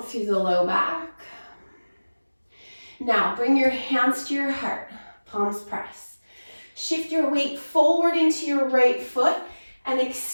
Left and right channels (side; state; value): both; inverted; correlation -1.00